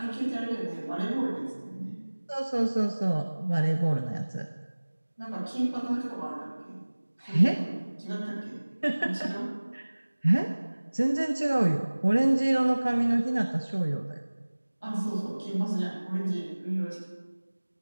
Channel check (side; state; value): both; inverted; correlation -1.00